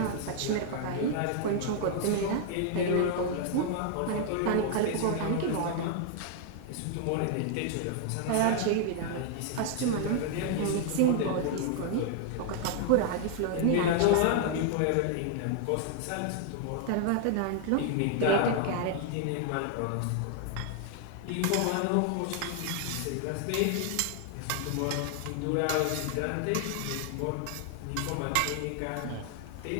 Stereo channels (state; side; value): different; both; correlation 0.00